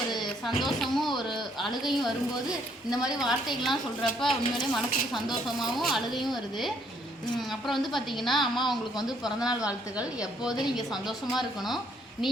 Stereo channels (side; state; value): both; normal; correlation 0.68